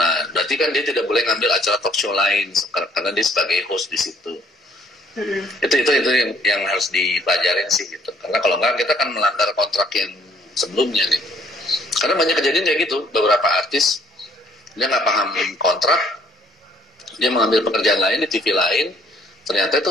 berarti kan dia tidak boleh ngambil acara talk show lain karena dia sebagai host di situ. Itu yang harus dipelajarin sih gitu. Karena kalau enggak kita akan melanggar kontrak yang sebelumnya gitu. Karena banyak kejadian kayak gitu, beberapa artis dia nggak paham kontrak, dia mengambil pekerjaan lain di TV lain, ternyata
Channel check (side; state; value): both; normal; correlation 0.62